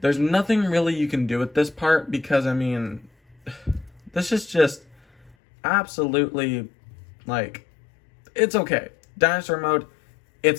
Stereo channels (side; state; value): right; drops out; at 5.4 s